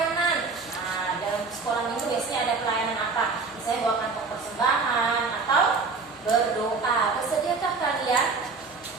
Nah, dalam sekolah minggu biasanya ada pelayanan apa? Misalnya bawa kantong persembahan atau berdoa. Bersediakah kalian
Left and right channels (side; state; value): left; quieter; 4.5 dB